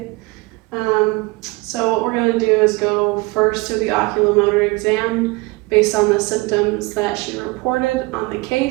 So what we're going to do is go first through the oculomotor exam based on the symptoms that she reported on the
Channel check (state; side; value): quieter; left; 23.9 dB